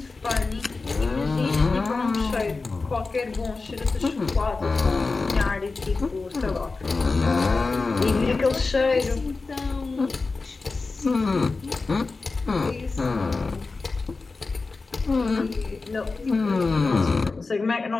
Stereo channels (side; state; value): right; quieter; 3.9 dB